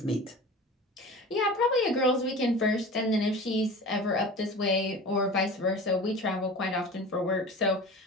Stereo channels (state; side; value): normal; both; correlation 0.36